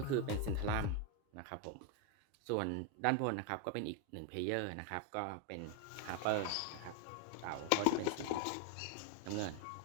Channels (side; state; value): both; different; correlation 0.01